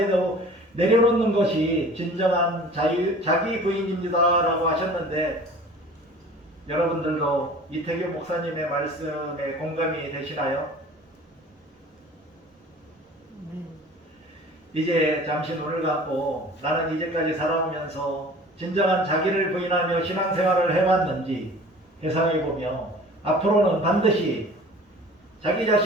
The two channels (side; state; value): both; normal; correlation 0.45